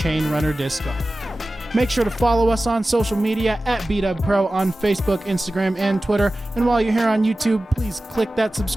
Runner Disc Golf. Make sure to follow us on social media at BDub Pro on Facebook, Instagram, and Twitter. And while you're here on YouTube, please click that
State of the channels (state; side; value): normal; both; correlation 0.96